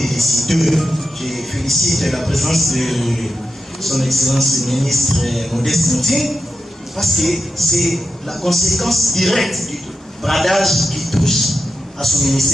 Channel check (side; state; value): both; normal; correlation 0.89